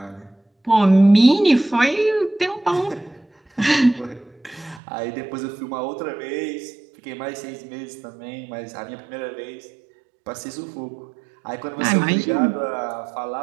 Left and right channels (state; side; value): drops out; left; at 4.8 s